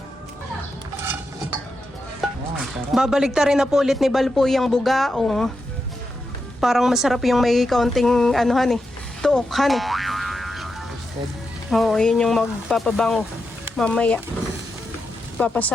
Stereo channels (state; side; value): normal; both; correlation 0.87